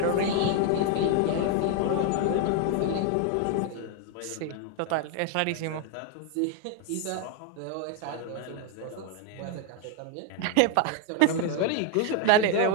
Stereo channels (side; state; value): both; different; correlation 0.01